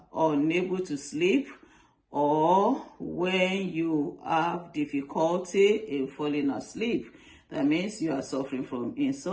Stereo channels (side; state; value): both; identical; correlation 1.00